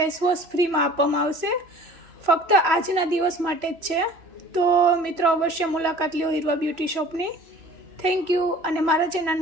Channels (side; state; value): left; late; 3.0 ms